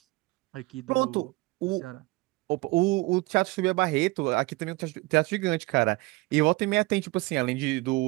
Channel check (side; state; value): left; quieter; 23.0 dB